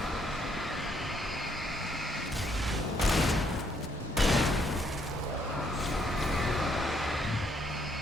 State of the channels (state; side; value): normal; both; correlation 0.70